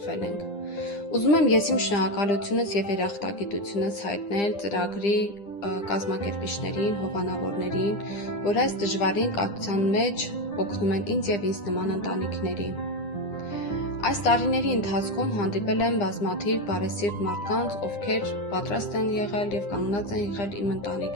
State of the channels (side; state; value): right; late; 9.9 ms